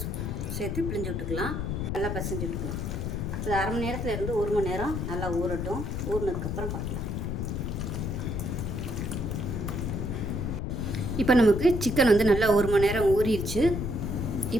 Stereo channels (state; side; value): noise; left; rumble, 3 dB below the sound